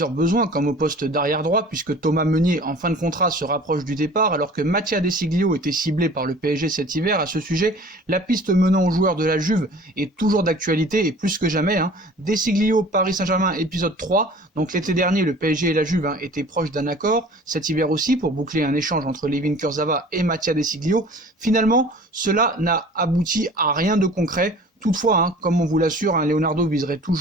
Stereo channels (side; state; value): both; normal; correlation 0.45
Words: besoins comme au poste d'arrière droit puisque Thomas Meunier en fin de contrat se rapproche du départ alors que Mattia De Sciglio était ciblé par le PSG cet hiver. À ce sujet, la piste menant aux joueurs de la Juve est toujours d'actualité et plus que jamais. De Sciglio, Paris Saint-Germain, épisode 3, donc l'été dernier le PSG et la Juve étaient proches d'un accord, cet hiver aussi pour boucler un échange entre Layvin Kurzawa et Mattia De Sciglio. Finalement, cela n'a abouti à rien de concret. Toutefois, comme on vous l'assure, Leonardo viserait